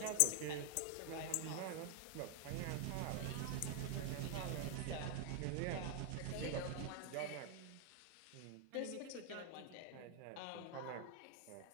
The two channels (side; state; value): both; different; correlation 0.00